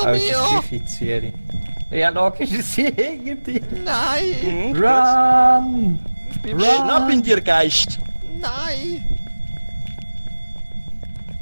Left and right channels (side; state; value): both; inverted; correlation -1.00